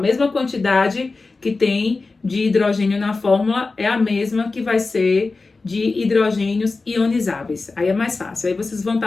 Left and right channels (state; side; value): quieter; right; 3.8 dB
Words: quantidade que tem de hidrogênio na fórmula é a mesma que vai ser de hidrogênios ionizáveis. Aí é mais fácil. Aí vocês vão